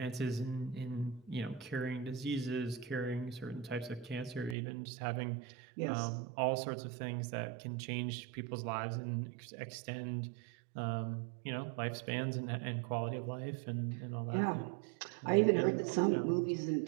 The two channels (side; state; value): left; drops out; at 4.5 s